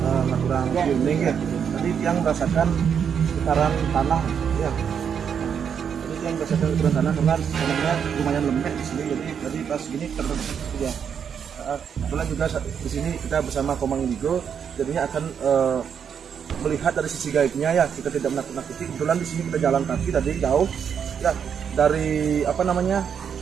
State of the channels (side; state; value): left; quieter; 7.5 dB